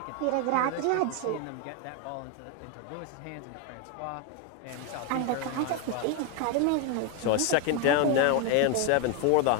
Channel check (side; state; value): both; different; correlation 0.01